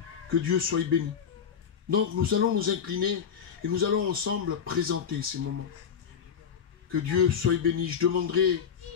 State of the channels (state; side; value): quieter; right; 7.4 dB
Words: Que Dieu soit béni. Donc, nous allons nous incliner et nous allons ensemble présenter ces moments. Que Dieu soit béni. Je demanderai